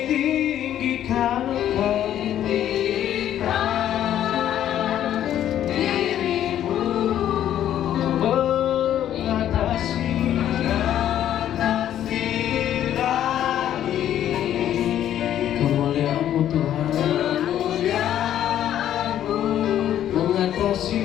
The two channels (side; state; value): right; quieter; 11.2 dB